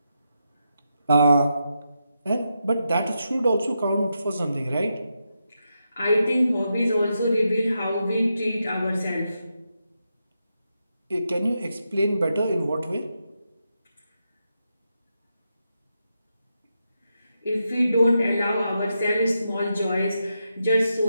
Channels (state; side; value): inverted; both; correlation -0.85